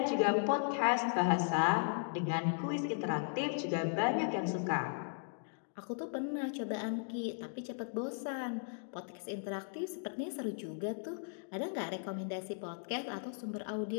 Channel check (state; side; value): silent; right; digital silence